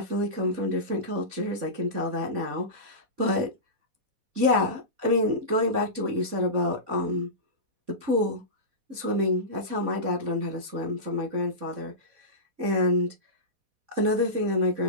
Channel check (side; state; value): left; late; 3.5 ms